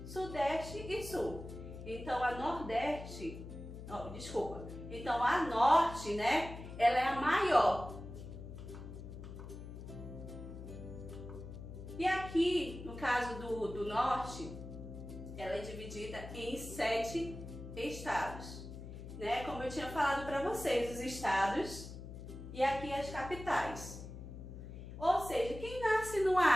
Sudeste e Sul. Então, a Nordeste, então a Norte, né? Ela é a maior. E aqui, no caso do Norte, ela é dividida em 7 estados, né? Como eu tinha falado para vocês, os estados e aqui as capitais. Ou seja, quem nasce no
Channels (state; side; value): noise; left; hum, 11 dB below the sound